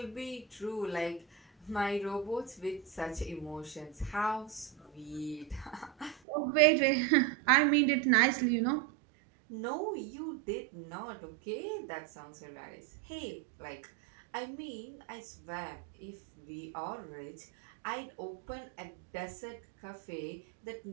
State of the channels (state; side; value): drops out; left; at 6.2 s